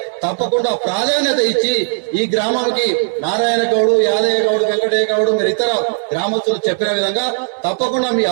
తప్పకుండా ప్రాధాన్యత ఇచ్చి ఈ గ్రామానికి నారాయణ గౌడు, యాదయ్య గౌడు, వెంకటయ్య గౌడు, మీరు ఇతర గ్రామస్తులు చెప్పిన విధంగా తప్పకుండా మీ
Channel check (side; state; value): left; silent; digital silence